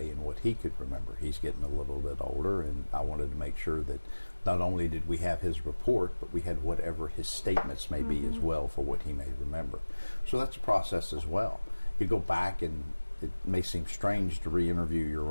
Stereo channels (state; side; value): inverted; both; correlation -1.00